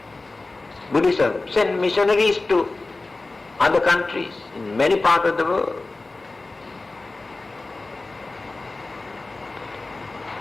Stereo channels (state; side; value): quieter; right; 3.3 dB